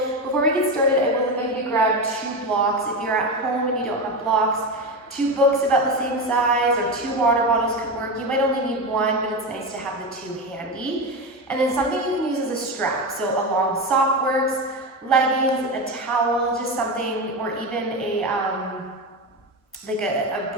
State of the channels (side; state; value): both; normal; correlation 0.18